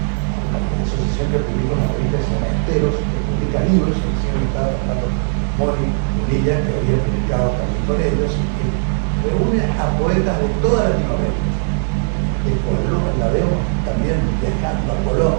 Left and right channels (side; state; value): left; silent; digital silence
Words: asociación que publica una revista que se llama Esteros, que publica libros, que recién estaba tratando Moni Unilla, que había publicado también con ellos, y que reúne a poetas de toda Latinoamérica. La veo también viajando a